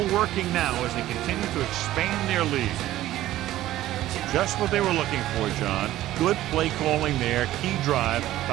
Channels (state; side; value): quieter; left; 14.6 dB